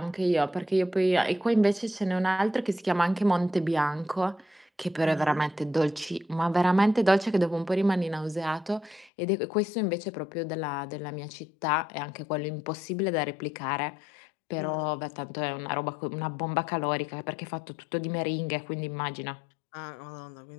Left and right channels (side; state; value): right; drops out; at 9.1 s